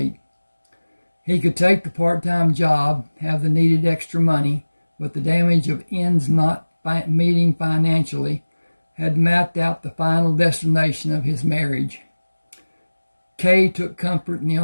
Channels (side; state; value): both; inverted; correlation -1.00